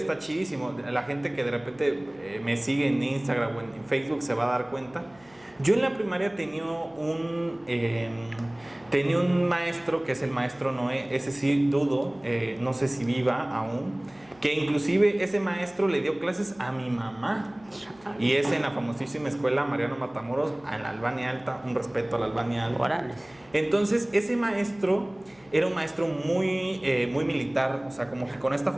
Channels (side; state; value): left; noise; hum, 28 dB below the sound